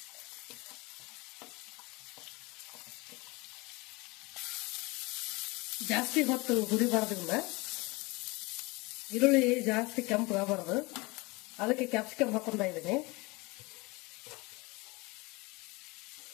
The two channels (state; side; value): quieter; right; 24.9 dB